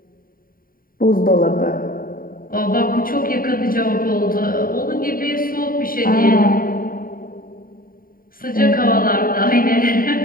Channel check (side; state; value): right; late; 0.41 ms